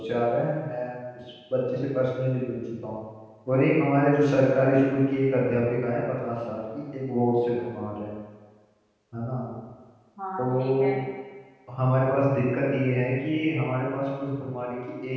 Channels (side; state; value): both; identical; correlation 1.00